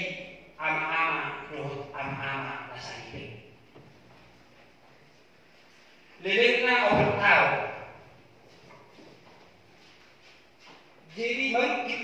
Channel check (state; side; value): identical; both; correlation 1.00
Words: ama-ama roh ama-ama nasa hidup lelekna orang tahu jadi merikit